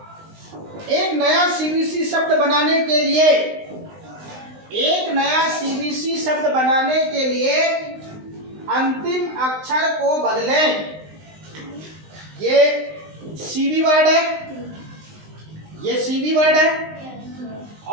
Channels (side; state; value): left; late; 19 ms